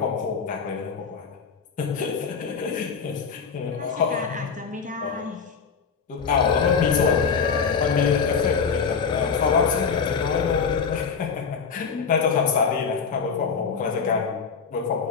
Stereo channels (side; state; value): right; quieter; 5.9 dB